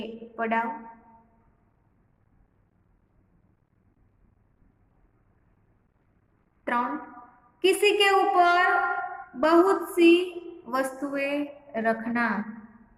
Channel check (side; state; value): both; identical; correlation 1.00